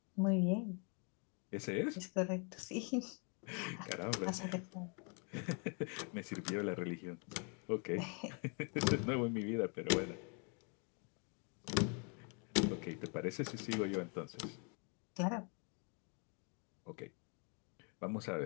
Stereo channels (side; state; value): right; quieter; 37.1 dB